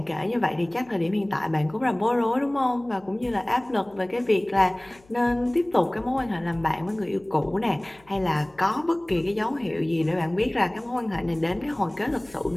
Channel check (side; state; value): left; noise; hum, 29 dB below the sound